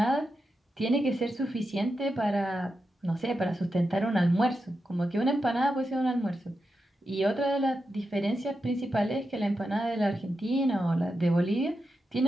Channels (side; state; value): both; normal; correlation 0.88